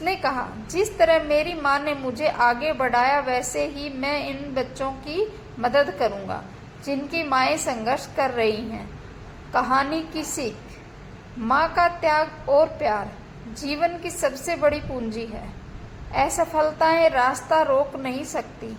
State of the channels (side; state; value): both; identical; correlation 1.00